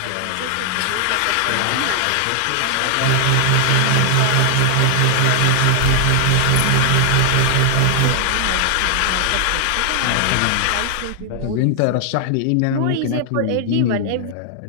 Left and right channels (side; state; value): both; different; correlation 0.00